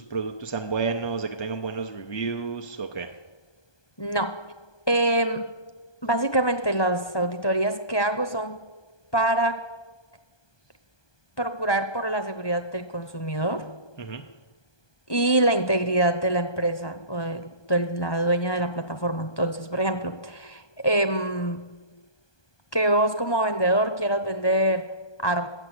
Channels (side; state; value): right; late; 1.2 ms